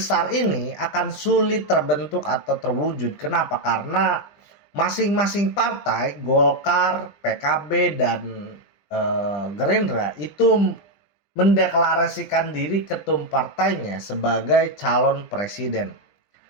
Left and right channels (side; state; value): right; late; 20 ms